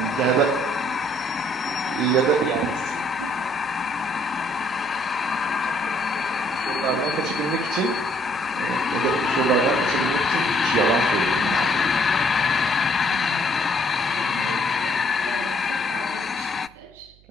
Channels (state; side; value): noise; right; hum, 28 dB below the sound